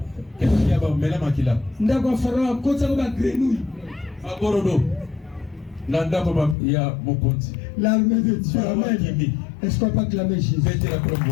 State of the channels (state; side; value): drops out; right; at 6.6 s